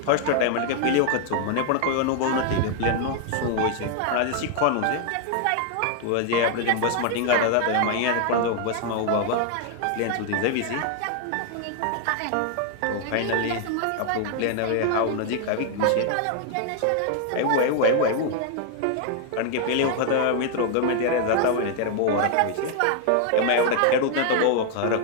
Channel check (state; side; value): different; both; correlation 0.00